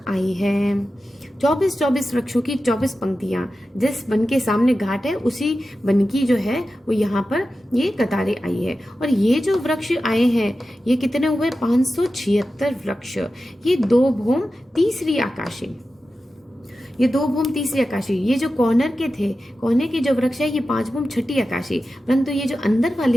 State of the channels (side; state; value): both; normal; correlation 0.93